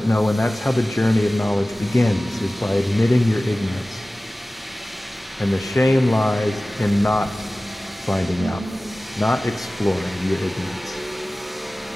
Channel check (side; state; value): both; normal; correlation 0.97